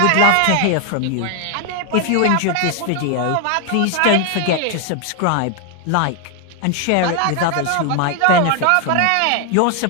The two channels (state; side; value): different; both; correlation 0.01